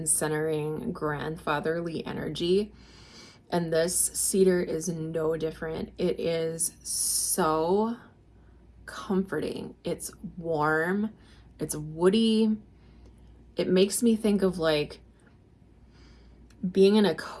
centering grandfatherly energy. And this cedar is no different. It is so comforting. It's warm. It's woody. It makes me think of like being in a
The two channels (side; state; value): both; identical; correlation 1.00